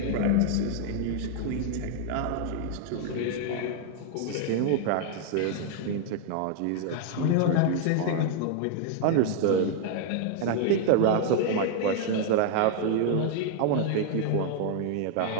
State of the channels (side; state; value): both; different; correlation 0.00